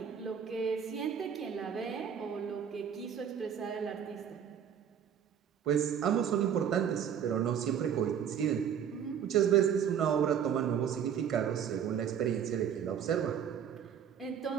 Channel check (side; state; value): left; quieter; 8.5 dB